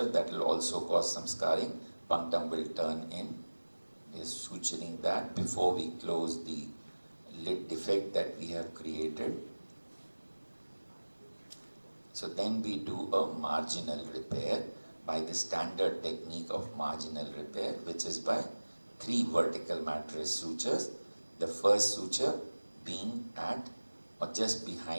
that will also cause some scarring. Punctum will turn in. We are suturing that before we close the lid defect that we have created. So then we do a marginal repair by the standard technique of marginal repair, which is by 3 vertical mattress sutures. The first suture being at or just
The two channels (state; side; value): inverted; both; correlation -1.00